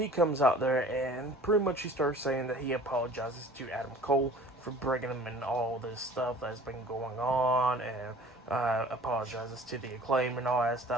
comes out there and pretty much he starts saying that he apologizes to Adam Cole for bringing him in all this stuff that's been going on, and apologizes to the Acclaim and all that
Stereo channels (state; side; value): normal; both; correlation 0.47